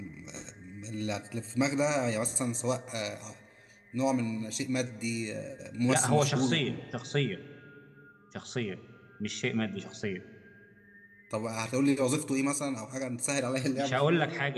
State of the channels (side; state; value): both; identical; correlation 1.00